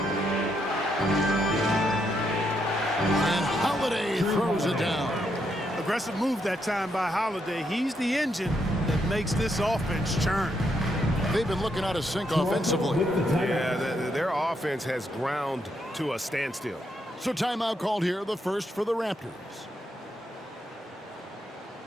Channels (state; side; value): normal; both; correlation 0.78